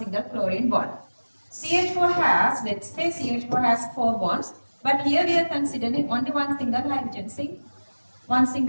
chlorine bond. CH4 has, let's say CH4 has 4 bonds, but here we are considering only one single hydrogen. See, one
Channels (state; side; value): inverted; both; correlation -1.00